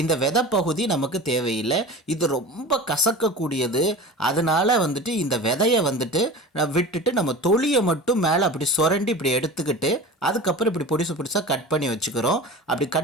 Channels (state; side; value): normal; both; correlation 0.34